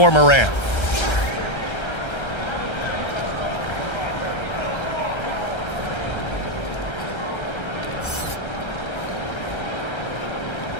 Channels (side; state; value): right; late; 1.3 ms